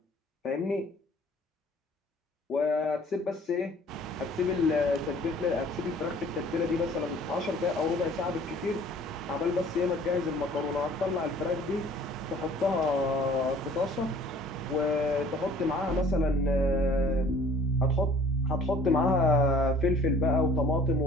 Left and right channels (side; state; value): both; normal; correlation 0.53